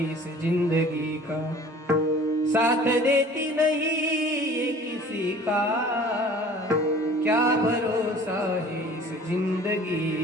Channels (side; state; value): both; normal; correlation 0.47